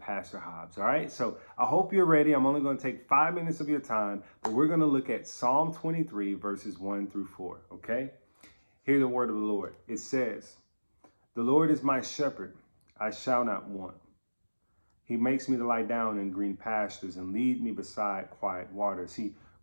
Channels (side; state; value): both; inverted; correlation -1.00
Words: Hobbs. All right. So I hope you're ready. I'm only going to take 5 minutes of your time, but we're going to look at Psalm 23, verses 1 through 4. Okay. Hear the word of the Lord. It says, "The Lord is my shepherd. I shall not want. He makes me to lie down in green pastures and lead me beside quiet waters. He